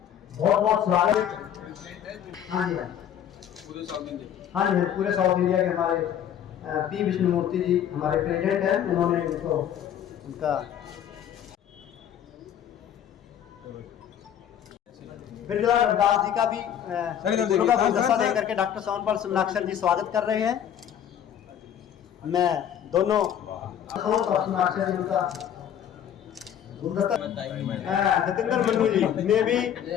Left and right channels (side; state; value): right; quieter; 9.7 dB